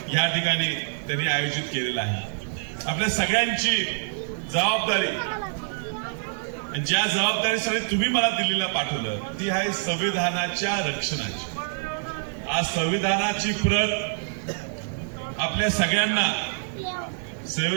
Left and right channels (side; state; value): left; silent; digital silence